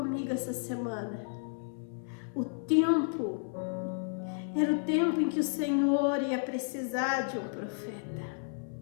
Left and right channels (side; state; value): right; silent; 56 dB below the other